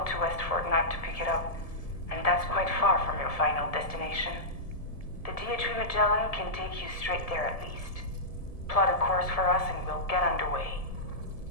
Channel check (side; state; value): right; late; 1.7 ms